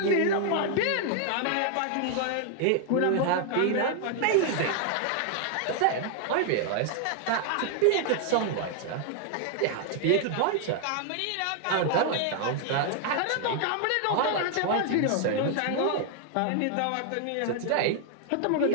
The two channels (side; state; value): both; different; correlation 0.00